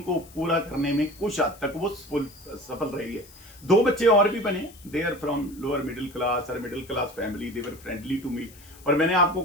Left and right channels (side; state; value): left; noise; hiss, 22 dB below the sound